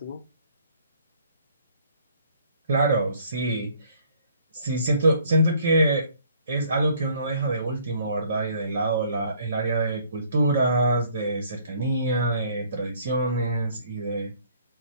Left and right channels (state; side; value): inverted; both; correlation -0.59